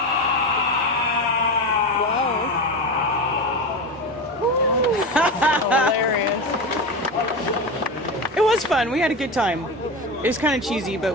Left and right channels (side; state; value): both; normal; correlation 0.22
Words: Hilarious. It was fun. We had a good time. It was kind of cheesy,